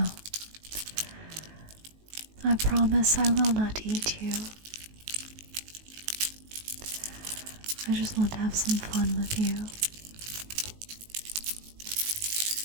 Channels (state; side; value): late; left; 19 ms